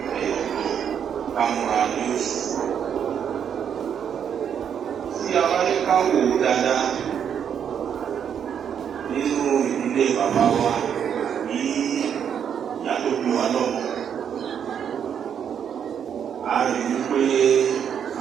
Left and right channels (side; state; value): left; quieter; 8.2 dB